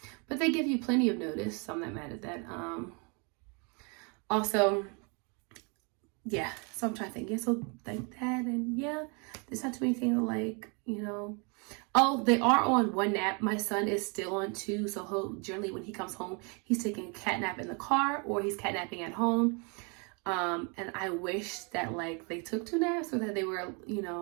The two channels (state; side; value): quieter; left; 33.5 dB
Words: but they give you plenty of notice, so I'm not mad at that. Also, yeah, so I'm trying to think, yeah, so like that, and yeah, there's not too many things like, you know. Oh, they are on one nap. My son is still on 2, so he'll generally, when he comes home, he's taking a cat nap in the car or he's catnapping at home. And I wish that like they took 2 naps, or that they were, you